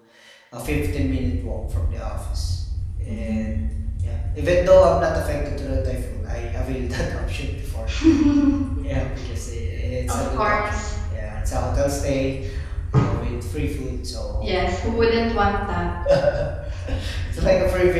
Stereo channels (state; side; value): identical; both; correlation 1.00